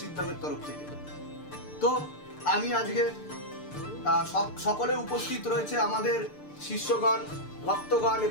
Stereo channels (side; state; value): right; late; 6.7 ms